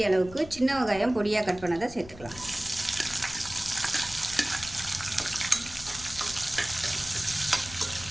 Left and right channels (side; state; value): left; noise; rumble, 16 dB below the sound